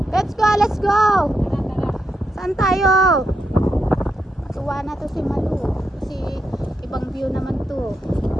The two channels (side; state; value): both; normal; correlation 0.83